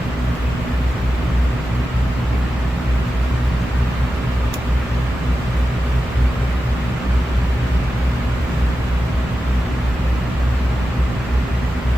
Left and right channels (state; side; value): normal; both; correlation 0.92